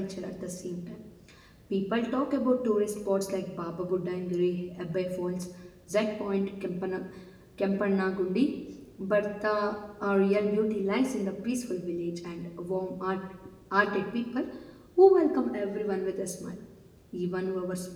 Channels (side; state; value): both; identical; correlation 1.00